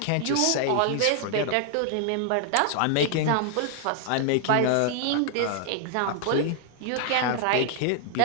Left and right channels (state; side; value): different; both; correlation 0.00